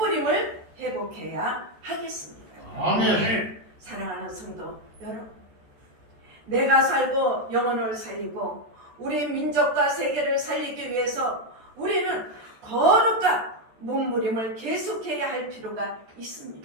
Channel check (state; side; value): late; left; 14 ms